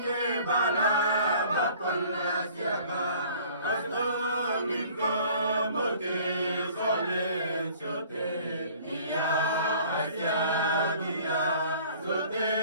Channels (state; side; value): inverted; both; correlation -0.51